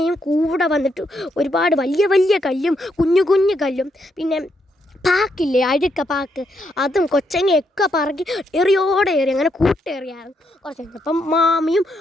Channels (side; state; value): both; normal; correlation 0.78